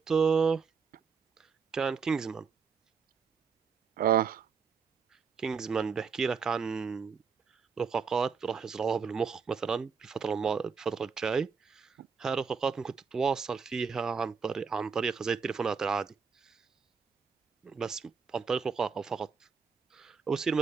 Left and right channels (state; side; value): quieter; left; 5.7 dB